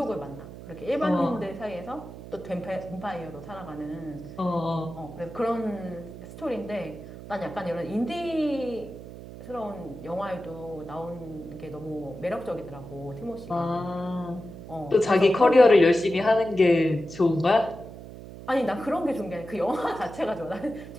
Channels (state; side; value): noise; right; hum, 14 dB below the sound